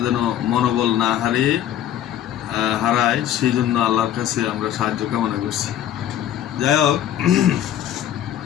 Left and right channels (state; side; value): quieter; right; 11.1 dB